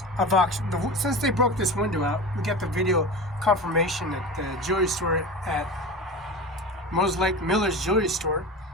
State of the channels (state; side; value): normal; both; correlation 0.30